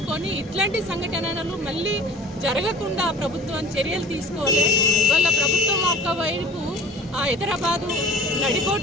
ఇట్లాంటి సంఘటనలు మళ్ళీ జరగకుండా ప్రభుత్వం చర్యలు తీసుకోవాలి. వాళ్ళ ప్రభుత్వం ఒకవైపు హైదరాబాదు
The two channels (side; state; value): both; normal; correlation 0.43